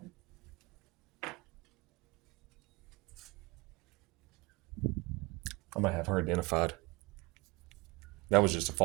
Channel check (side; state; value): left; quieter; 23.8 dB